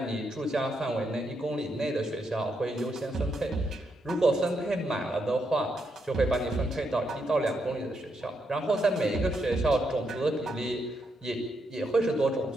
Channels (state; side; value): normal; both; correlation 0.80